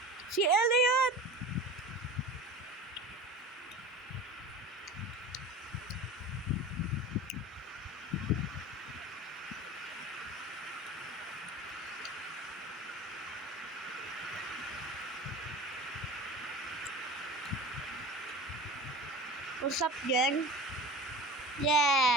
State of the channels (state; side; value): normal; both; correlation 0.35